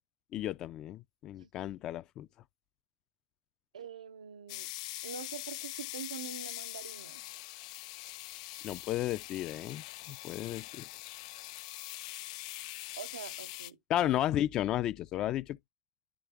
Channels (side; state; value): right; quieter; 10.5 dB